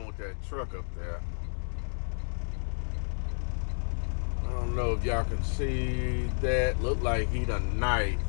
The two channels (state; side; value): silent; right; digital silence